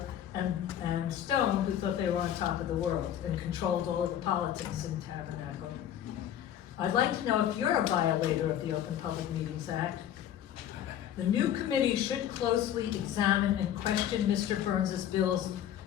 and Stone, who thought they were on top of the world and controlled all of the politics in Tabernacle. I'd like to know if you're a violator of the Open Public Meetings Act. The new committee should closely examine and question Mr. Burns's bills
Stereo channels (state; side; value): quieter; right; 10.7 dB